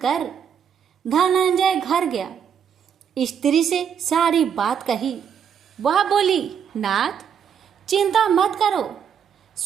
धनंजय घर गया, स्त्री से सारी बात कही। वह बोली, नाथ, चिंता मत करो,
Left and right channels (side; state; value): left; quieter; 7.8 dB